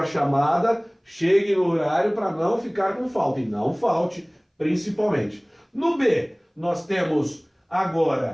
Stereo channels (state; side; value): identical; both; correlation 1.00